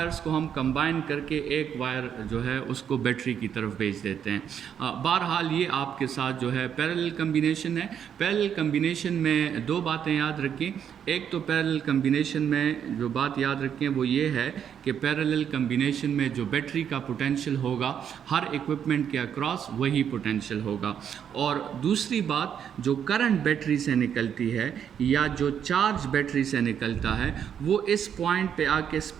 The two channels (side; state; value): left; quieter; 8.5 dB